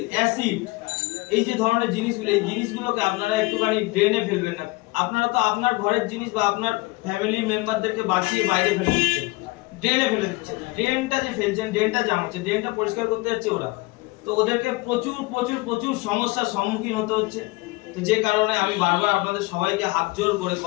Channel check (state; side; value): quieter; right; 23.7 dB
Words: অ্যাসিড, এই যে ধরনের জিনিসগুলো, এই জিনিসগুলোকে আপনারা একটুখানি ড্রেনে ফেলবেন না। আপনারা তো আপনার ঘরের জিনিস বা আপনার ফ্যামিলি মেম্বারদেরকে বাঁচিয়ে বাইরে ফেলে দিচ্ছেন, ড্রেনে ফেলে দিচ্ছেন। ড্রেনটা যে ফেলছেন, ড্রেনটা জাম হচ্ছে, ড্রেনটা পরিষ্কার করতে যাচ্ছে ওরা, তো ওদেরকে প্রচুর প্রচুর প্রচুর সমস্যার সম্মুখীন হতে হচ্ছে। তো যে কারণে আমি বারবার আপনাদের সবাইকে হাত জোর করে